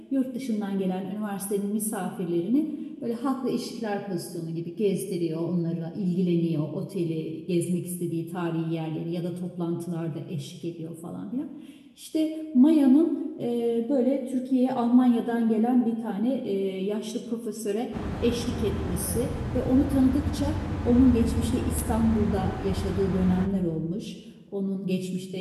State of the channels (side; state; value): both; identical; correlation 1.00